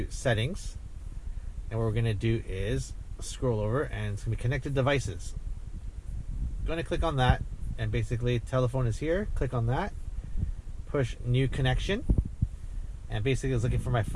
settings, and what we're going to do is scroll over, and it's going to be connected devices. I'm going to click on that, and basically telephone is here. Click on that, push new connection, and basically it's looking for my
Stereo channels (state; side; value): identical; both; correlation 1.00